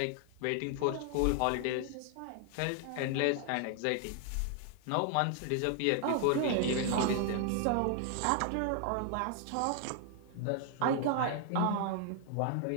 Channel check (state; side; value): different; both; correlation 0.00